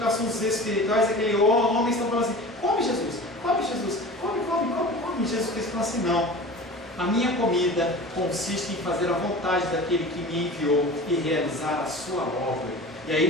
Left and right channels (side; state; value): both; normal; correlation 0.37